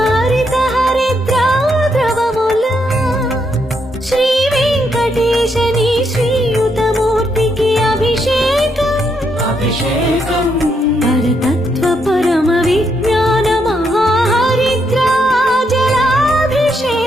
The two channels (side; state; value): both; normal; correlation 0.77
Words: హరిద్రాద్రవముల శ్రీ వెంకటేశని శ్రీయుతమూర్తికి అభిషేకం అభిషేకం పరతత్వ పరమ విజ్ఞాన